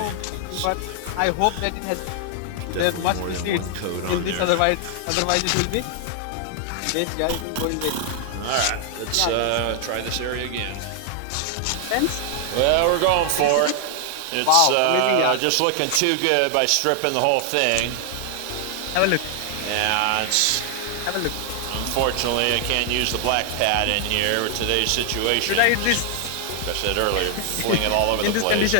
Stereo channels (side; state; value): both; different; correlation 0.00